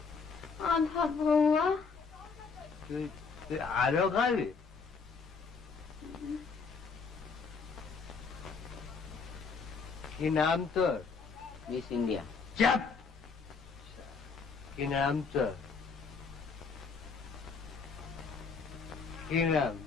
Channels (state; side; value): quieter; right; 5.1 dB